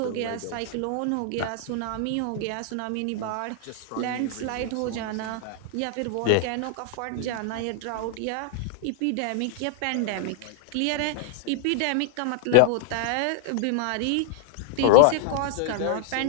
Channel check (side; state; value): both; different; correlation 0.00